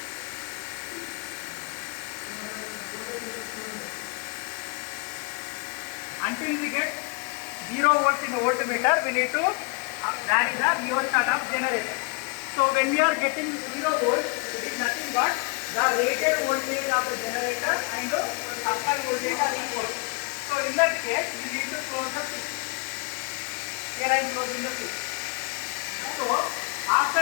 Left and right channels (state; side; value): quieter; right; 31.7 dB